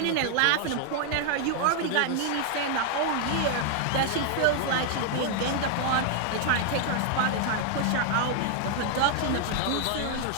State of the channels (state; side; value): different; both; correlation 0.00